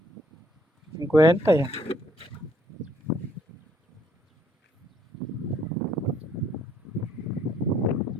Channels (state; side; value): normal; both; correlation 0.65